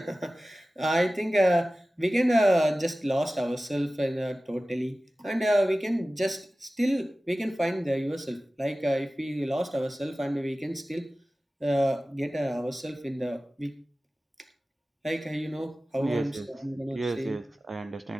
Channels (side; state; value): both; normal; correlation 0.96